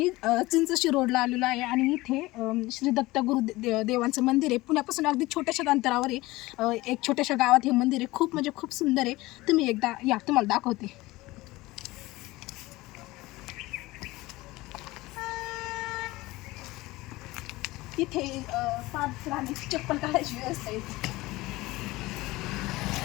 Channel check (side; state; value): right; quieter; 19.8 dB